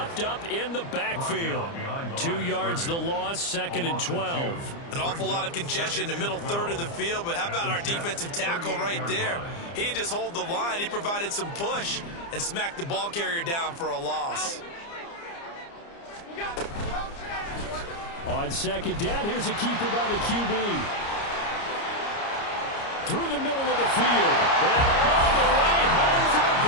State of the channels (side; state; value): right; late; 30 ms